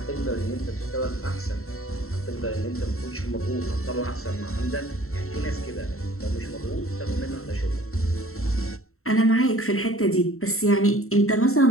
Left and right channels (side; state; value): right; late; 0.63 ms